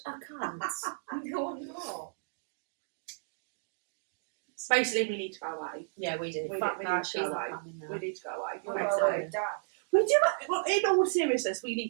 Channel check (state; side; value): silent; left; digital silence